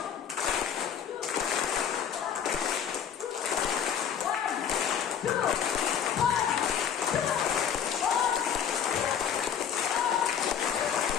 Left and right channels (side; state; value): right; quieter; 8.4 dB